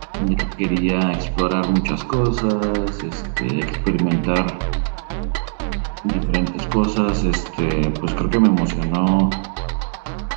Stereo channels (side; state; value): left; silent; digital silence